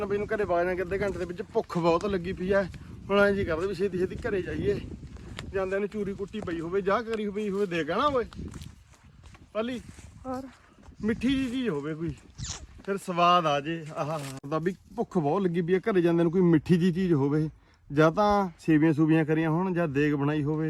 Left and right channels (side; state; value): both; identical; correlation 1.00